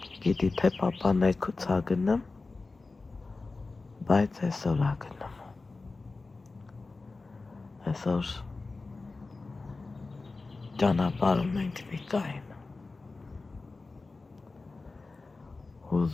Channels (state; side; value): quieter; right; 3.7 dB